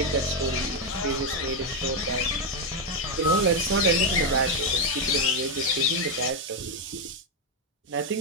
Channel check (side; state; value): both; normal; correlation 0.04